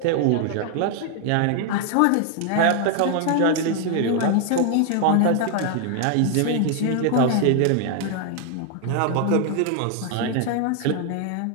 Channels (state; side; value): different; both; correlation 0.00